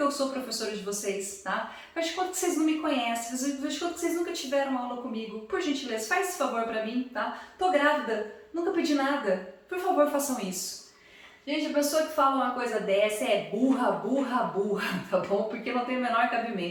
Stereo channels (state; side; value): identical; both; correlation 1.00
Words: eu sou professora de vocês, tá? Faz de conta que vocês não me conhecem, faz de conta que vocês nunca tiveram aula comigo. Por gentileza, faz esse favor pra mim, tá? Tô grávida, nunca pedi nada. Por favor, façam isso. Gente, a pessoa que fala uma coisa dessa é burra, burra, burra, tá bom? Porque não tem o menor